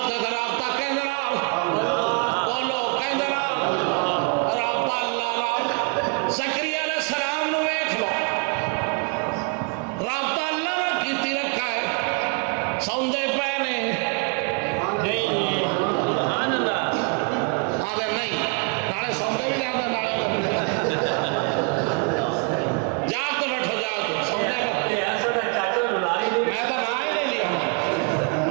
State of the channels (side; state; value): left; quieter; 33.9 dB